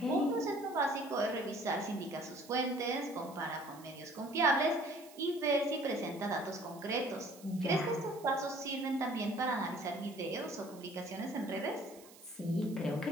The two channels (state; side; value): noise; right; hiss, 21 dB below the sound